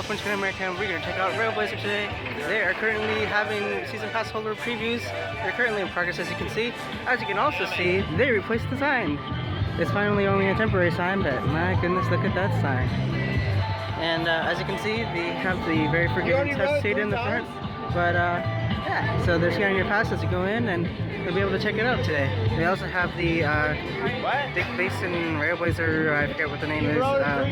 American. We're going to check out RailBlazer today. They are currently having season pass holder previews. They're currently in progress, as you can see. As you can also see, they replaced the sign. It's finally only a temporary sign, but my goodness, look at that sign. And as you can see, they have the very forgiving test seat in the front. But yeah, so they're scanning your pass as you go in, and you'll be able to check it out today. They also have the Big Basin RailBlazer, I forget what the name is,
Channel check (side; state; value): both; identical; correlation 1.00